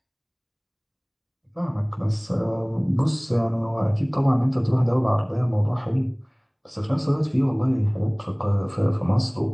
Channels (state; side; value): identical; both; correlation 1.00